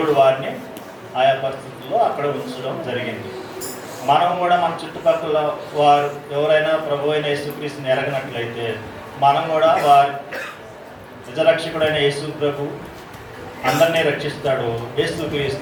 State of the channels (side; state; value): both; identical; correlation 1.00